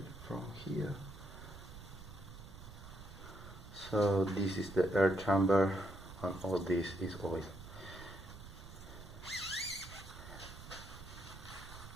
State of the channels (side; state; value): right; noise; rumble, 14 dB below the sound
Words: from here. So this is the air chamber and all this is oil.